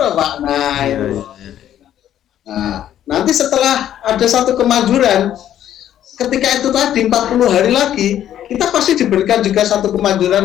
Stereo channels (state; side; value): quieter; right; 11.2 dB